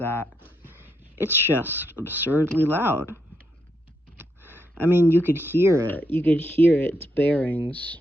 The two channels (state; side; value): normal; both; correlation 0.79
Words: it's just absurdly loud. I mean, you could hear it. You could hear its bearings.